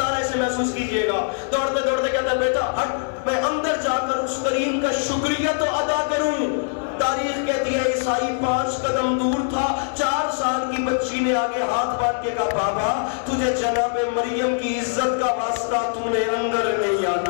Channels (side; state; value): right; silent; digital silence